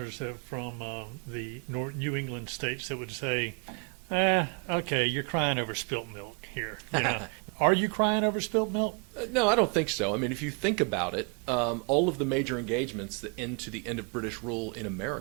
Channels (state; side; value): quieter; left; 36.9 dB